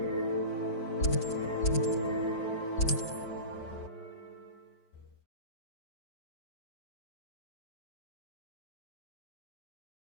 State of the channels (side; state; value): right; late; 5.1 ms